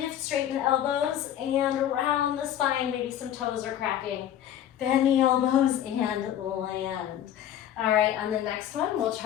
straighten the elbows, and around the spine. Maybe some toes are cracking. Bend the elbows and land. All right, on the next one, we'll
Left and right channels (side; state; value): right; quieter; 10.9 dB